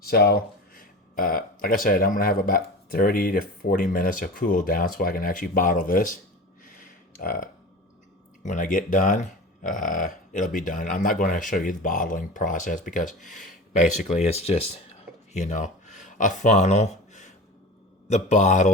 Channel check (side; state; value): both; normal; correlation 0.33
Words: So, like I said, I'm gonna have about 30 to 40 minutes of cool down so I can actually bottle this. When I get done, it'll be done. I'm not going to show you the bottling process because basically it's just, you know, a funnel, the